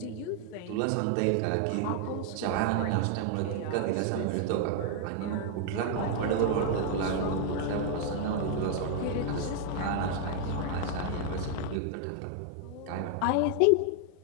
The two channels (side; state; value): both; different; correlation 0.00